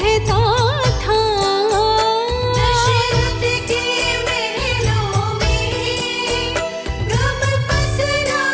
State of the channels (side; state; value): both; identical; correlation 1.00